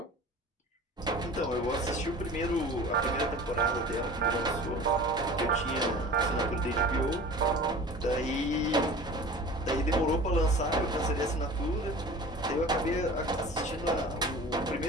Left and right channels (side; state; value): both; normal; correlation 0.40